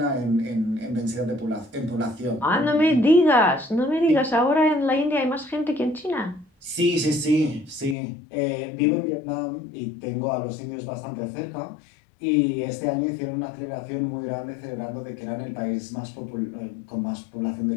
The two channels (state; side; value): drops out; right; at 8.0 s